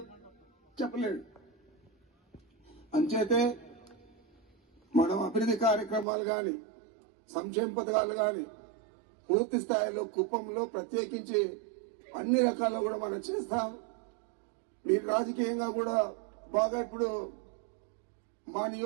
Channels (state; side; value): drops out; left; at 6.1 s